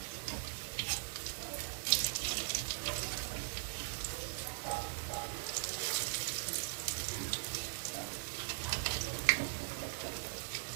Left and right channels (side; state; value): left; silent; digital silence